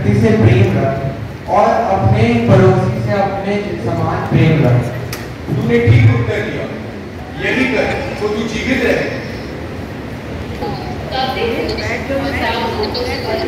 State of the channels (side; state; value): both; identical; correlation 1.00